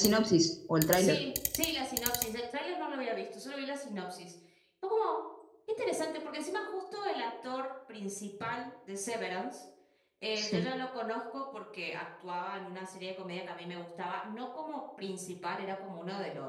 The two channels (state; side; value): identical; both; correlation 1.00